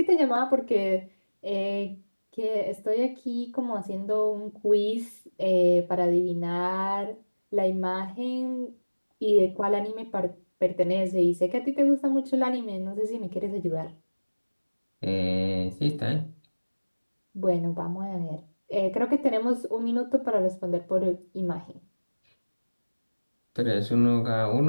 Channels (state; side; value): inverted; both; correlation -1.00